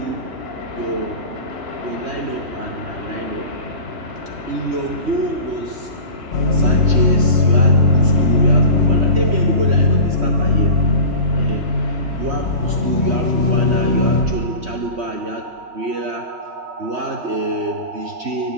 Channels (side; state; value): left; late; 3.1 ms